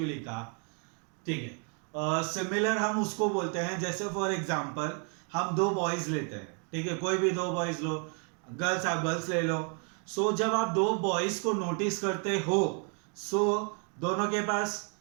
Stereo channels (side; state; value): left; quieter; 39.2 dB